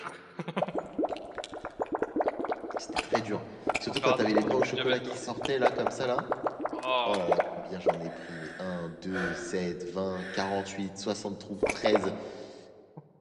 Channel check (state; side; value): identical; both; correlation 1.00